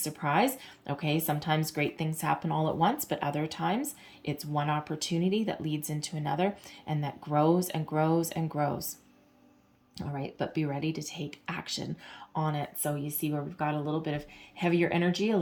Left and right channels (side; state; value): both; identical; correlation 1.00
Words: okay? Sometimes great things happen all at once, but other times it's one opportunity that leads into another and that grows and grows and grows. All right, but be ready to take action on it. So you see where we've got a little bit of heavier energy, a